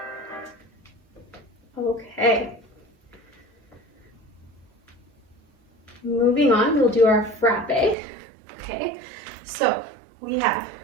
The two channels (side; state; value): left; drops out; at 8.0 s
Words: Okay. Moving on, we'll do our frappe. Okay, so we have